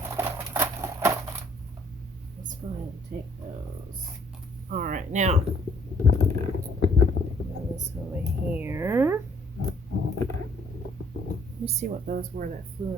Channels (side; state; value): both; normal; correlation 0.62